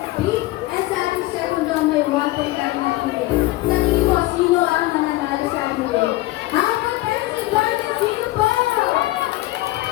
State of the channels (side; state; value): right; quieter; 18.6 dB